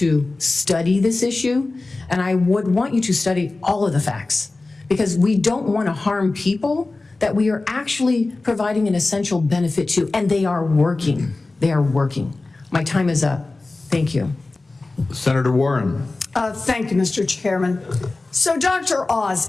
study this issue. And I would want you to study all of the facts, because we don't want to harm people that we are actually providing an essential benefit to, and they are working. They are working. My time is up. Thank you. Senator Warren. Thank you, Mr. Chairman. So, Dr. Oz,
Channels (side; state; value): right; quieter; 3.3 dB